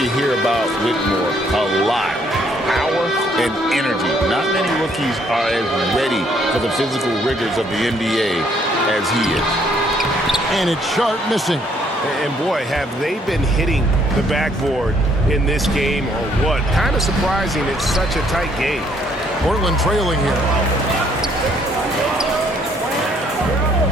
hear about Whitmore a lot: power and energy. Not many rookies are as ready for the physical rigors of the NBA as he is. And it's Sharp missing. And boy, have they been hitting the backboard in this game or what? Kind of surprising. It's such a tight game. Portland trailing here.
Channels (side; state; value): both; normal; correlation 0.66